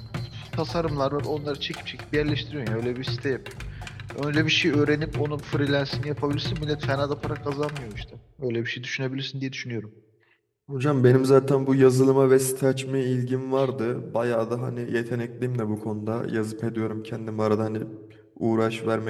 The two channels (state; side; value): identical; both; correlation 1.00